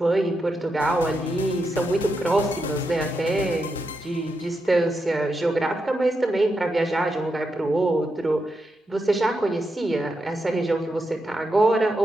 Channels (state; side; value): normal; both; correlation 0.85